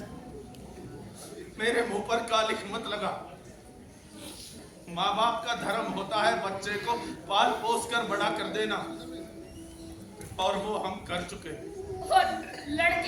मेरे मुंह पर कालिख मत लगा। माँ बाप का धर्म होता है बच्चे को पाल पोस कर बड़ा कर देना, और वो हम कर चुके। और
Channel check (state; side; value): identical; both; correlation 1.00